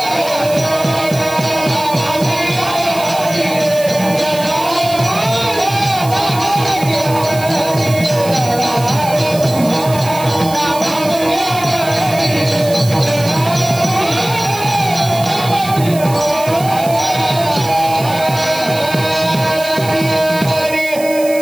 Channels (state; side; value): noise; right; hiss, 14 dB below the sound